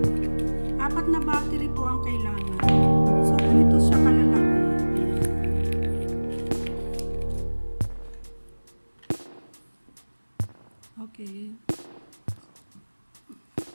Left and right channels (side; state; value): both; inverted; correlation -1.00